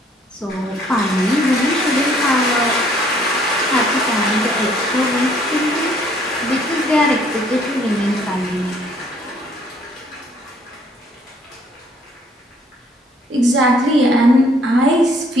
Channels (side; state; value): both; normal; correlation 0.62